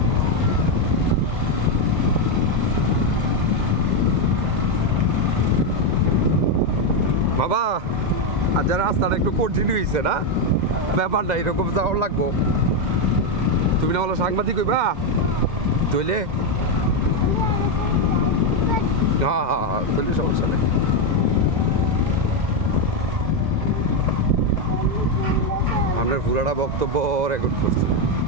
বাবা আর যারা রাস্তাটা একটু কঠিন হয়েছে না, ব্যাপারটা এরকম যাওয়ার লাগবো। তুমি না হলো সাংবাদিক হইবা তৈলে, হ্যাঁ হ্যাঁ হ্যাঁ, তৈলে সমস্যা নেই। আপনার পুরাটা বক্তব্য রেকর্ড করছি,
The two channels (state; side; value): late; left; 2.0 ms